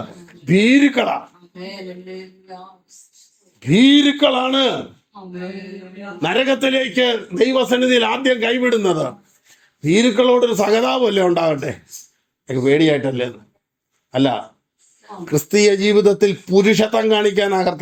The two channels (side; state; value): both; identical; correlation 1.00